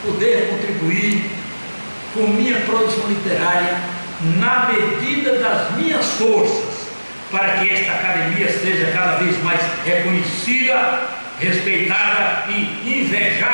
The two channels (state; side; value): inverted; both; correlation -1.00